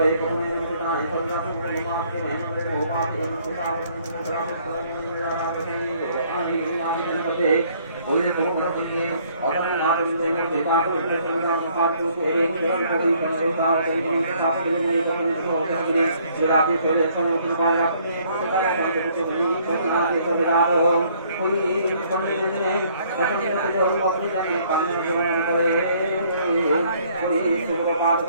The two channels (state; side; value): inverted; both; correlation -0.63